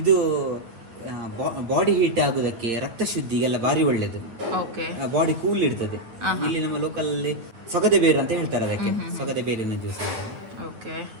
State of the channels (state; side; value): late; left; 9.2 ms